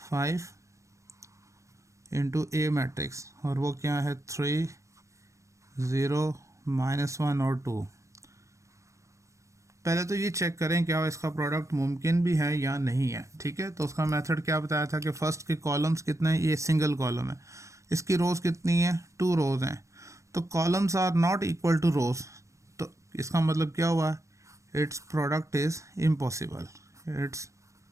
इंटू ए मैट्रिक्स, और वो क्या है 3 0 -1 और 2। पहले तो ये चेक करें क्या इसका प्रोडक्ट मुमकिन भी है या नहीं है। ठीक है। तो उसका मेथड क्या बताया था कि फर्स्ट के कॉलम्स कितने हैं, ये सिंगल कॉलम है, इसकी रोज़ कितनी है 2 रोज़ हैं, तो columns are not equal to rows, तो इसका मतलब क्या हुआ, its product is impossible, its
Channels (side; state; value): left; late; 0.15 ms